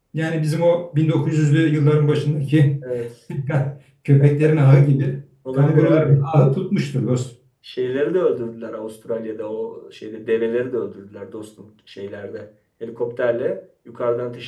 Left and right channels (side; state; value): both; identical; correlation 1.00